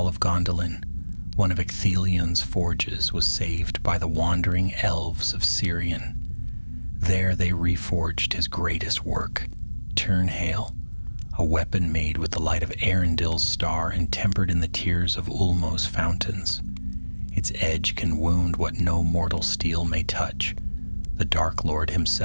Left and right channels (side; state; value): both; inverted; correlation -1.00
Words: of Gondolin, one of Ecthelion's forges was saved by the wandering elves of Sirion. There they reforged his greatest work, Turnhale, a weapon made with the light of Arundel's star and tempered in the tears of Ulmo's fountains. Its edge can wound what no mortal steel may touch. The Dark Lord